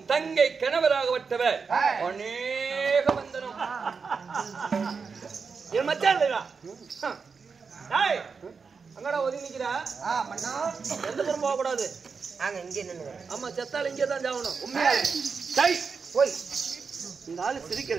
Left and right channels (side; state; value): left; quieter; 5.3 dB